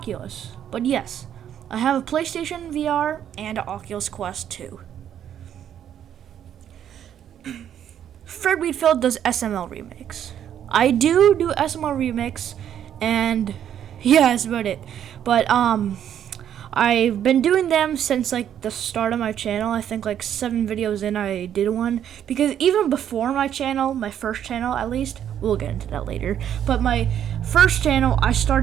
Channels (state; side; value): quieter; left; 9.8 dB